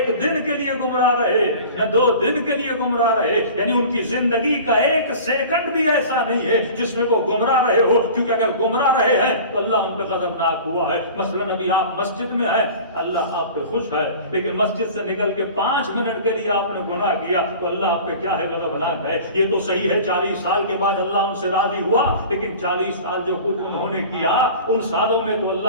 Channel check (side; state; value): both; inverted; correlation -0.40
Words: دن کے لیے گمراہ رہے، نہ 2 دن کے لیے گمراہ رہے. یعنی ان کی زندگی کا 1 سیکنڈ بھی ایسا نہیں ہے جس میں وہ گمراہ رہے ہو. کیونکہ اگر گمراہ رہے ہیں تو اللہ ان پہ غضبناک ہوا ہے. مثلا ابھی آپ مسجد میں ہیں، اللہ آپ پہ خوش ہے، لیکن مسجد سے نکل کے 5 منٹ کے لیے آپ نے گناہ کیا تو اللہ آپ پہ کیا ہے؟ غضبناک ہے. یہ تو صحیح ہے 40 سال کے بعد اللہ ان سے راضی ہوا، لیکن 40 سال جو کچھ انہوں نے کیا ان سالوں میں تو